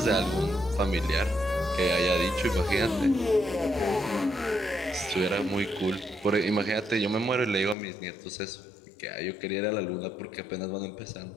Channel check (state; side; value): drops out; right; at 7.8 s